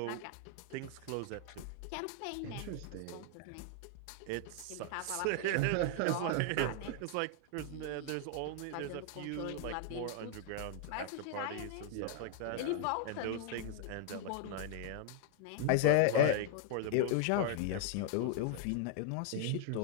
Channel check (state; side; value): different; both; correlation 0.00